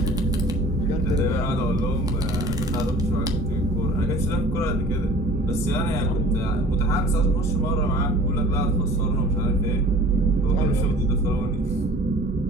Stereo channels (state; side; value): normal; both; correlation 0.46